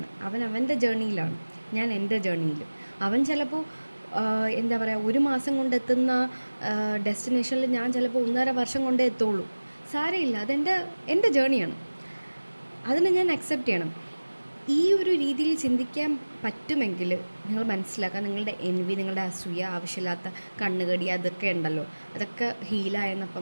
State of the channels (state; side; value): inverted; both; correlation -1.00